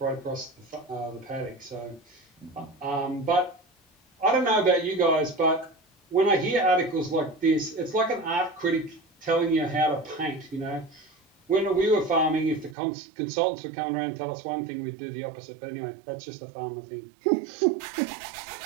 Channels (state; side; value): drops out; left; at 12.8 s